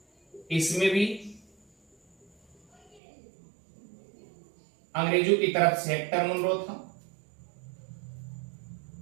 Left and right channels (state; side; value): drops out; left; at 3.0 s